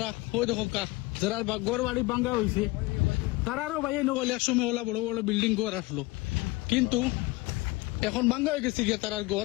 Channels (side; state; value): right; quieter; 22.0 dB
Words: ওই দেখো কা যারা গড় বাড়ি ভাঙ্গা হয়েছে তারারও ভাই নগলে এক সময় ওলা বড় বড় বিল্ডিং গড় আসলো, কিন্তু এখন ভাঙ্গা হয়ে গেছে গিয়ে তারার